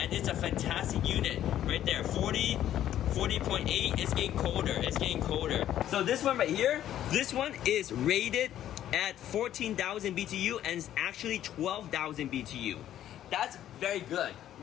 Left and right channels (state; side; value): quieter; right; 11.7 dB